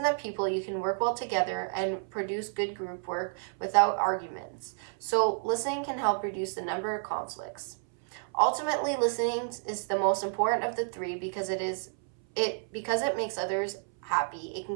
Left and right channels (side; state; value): left; silent; 58 dB below the other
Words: to people, you can work well together and produce good group work without arguments. So listening can help reduce the number of conflicts. Ultimately, listening is the most important of the three because it makes others happy, it can